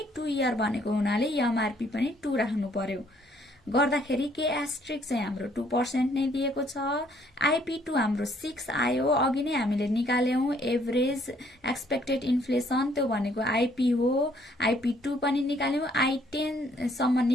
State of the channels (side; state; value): both; normal; correlation 0.65